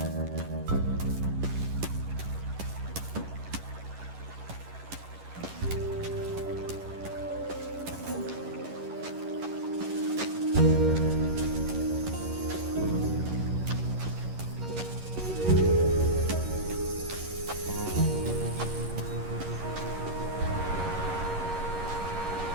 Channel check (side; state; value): left; late; 11 ms